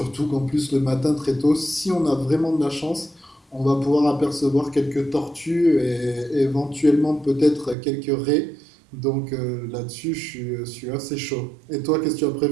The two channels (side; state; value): left; drops out; at 7.8 s